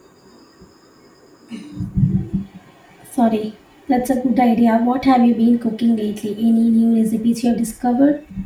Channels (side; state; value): both; identical; correlation 1.00